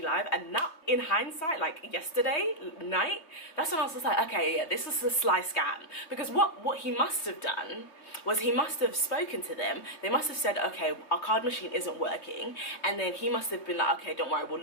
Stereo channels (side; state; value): right; late; 3.1 ms